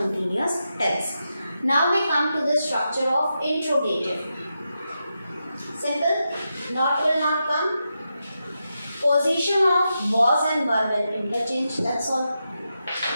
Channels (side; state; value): both; inverted; correlation -0.87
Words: tense. Now we come to the structure of interrogative. Simple. Not will not come. Position of was and were will interchange. That's all.